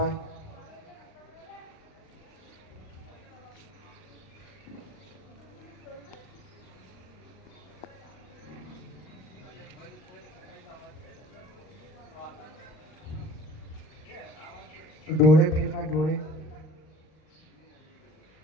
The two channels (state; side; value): late; right; 39 ms